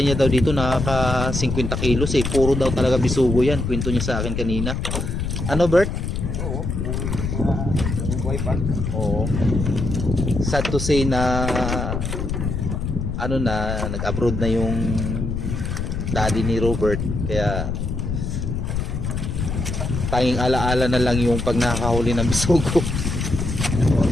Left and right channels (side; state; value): left; noise; rumble, 2 dB below the sound